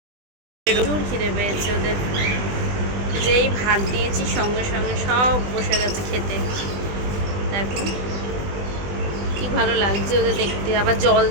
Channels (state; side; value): late; left; 20 ms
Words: প্রচুর খিদে পেয়েছে ওদের। যেই ভাত দিয়েছি সঙ্গে সঙ্গে সব বসে গেছে খেতে। দেখো কি ভালো লাগছে ওদের দেখতে। আবার জল